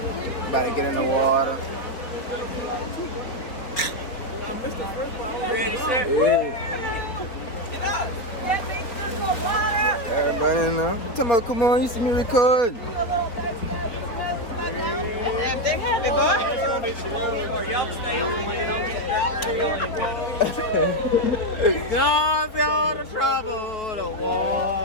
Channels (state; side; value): late; right; 4.0 ms